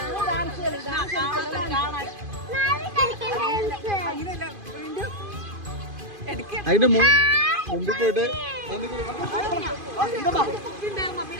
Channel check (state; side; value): late; left; 2.5 ms